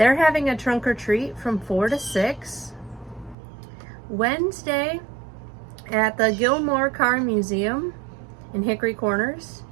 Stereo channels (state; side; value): drops out; left; at 3.4 s